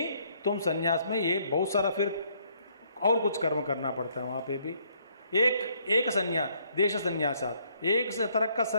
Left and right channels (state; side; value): inverted; both; correlation -0.67